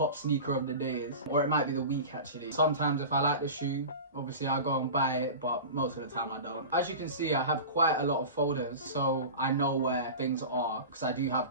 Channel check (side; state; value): both; inverted; correlation -0.32